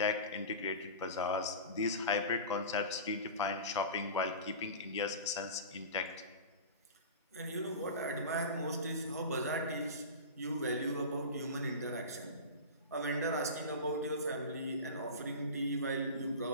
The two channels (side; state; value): both; inverted; correlation -0.31